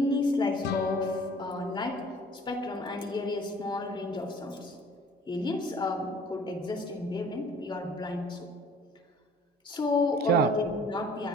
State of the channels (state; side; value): normal; both; correlation 0.51